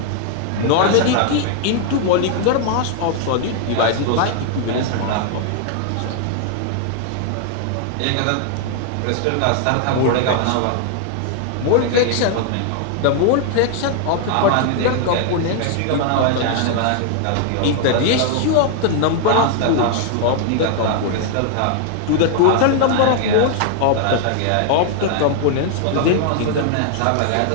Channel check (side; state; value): both; different; correlation 0.00